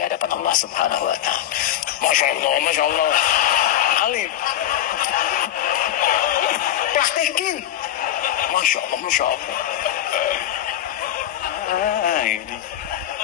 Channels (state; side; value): quieter; right; 11.9 dB